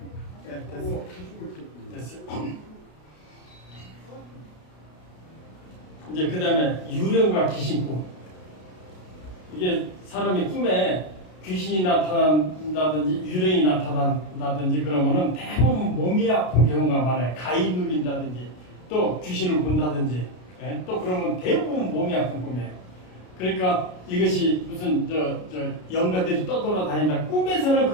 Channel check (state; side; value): late; right; 33 ms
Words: 네, 됐어요. 이제 그 다음에 유령과 귀신꿈. 이게 사람이 꿈에 귀신이 나타난다든지 유령이 나타난다든지 그러면은 대부분 몸이 아픈 경우가 많아요. 가위 눌린다든지 또 귀신을 본다든지 또 그러면 대부분 몸이 아픈 꿈이에요. 그러니까 이것이 무슨 저 영가들이 떠돌아다닌다. 꿈에서는